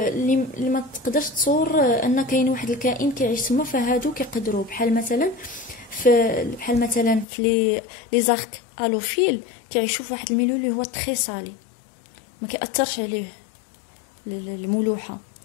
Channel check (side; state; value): right; drops out; at 7.2 s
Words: ما تقدرش تصور ان كاين واحد الكائن كيعيش تما فهادو كيقدروا بحال مثلا في لي زارك الوفيل كيعيشوا في واحد الميليو اللي هو تري سالي ما كيأثرش عليه الملوحه